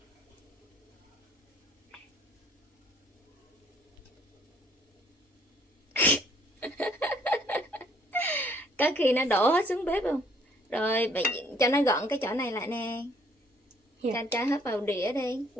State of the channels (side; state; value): both; normal; correlation 0.63